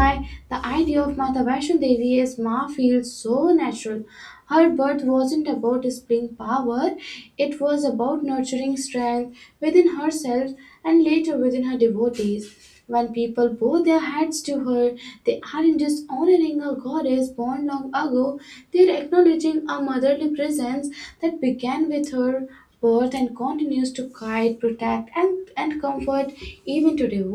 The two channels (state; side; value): identical; both; correlation 1.00